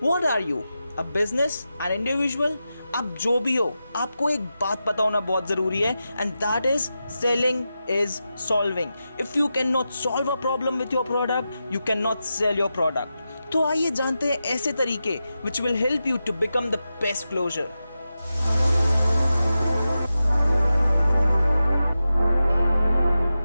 are you? A business? An individual? आप जो भी हो आपको एक बात पता होना बहुत ज़रूरी है and that is selling is solving. If you cannot solve a problem with your product, you cannot sell your product. तो आइए जानते हैं ऐसे तरीके which will help you to become the best closer.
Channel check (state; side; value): inverted; both; correlation -0.91